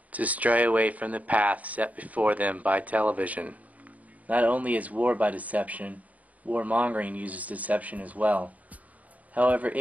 to stray away from the path set before them by television. Not only is war by deception, warmongering uses deception as well. However,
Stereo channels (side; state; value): left; late; 0.072 ms